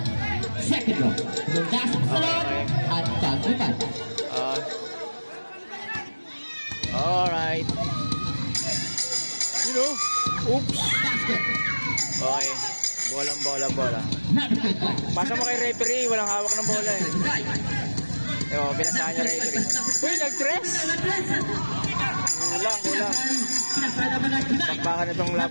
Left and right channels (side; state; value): both; inverted; correlation -1.00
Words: Second draw, lumasok sa loob at pag-upan. Alright. You know, oops. Basket. Okay. Bola. Pasa mo kay referee, walang hawak ng bola eh. Ewan, pinasahan niya referee. Uy, nag-dress! Kulang. Takpakan na itong